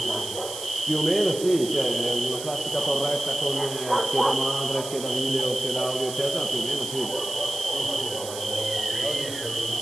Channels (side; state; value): right; noise; hiss, 10 dB below the sound